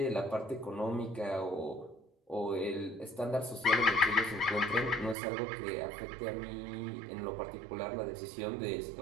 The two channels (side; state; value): left; drops out; at 5.2 s